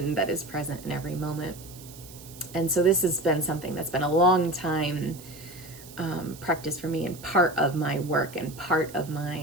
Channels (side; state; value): right; noise; hiss, 18 dB below the sound